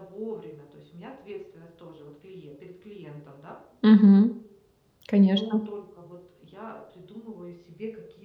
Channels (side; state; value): both; identical; correlation 1.00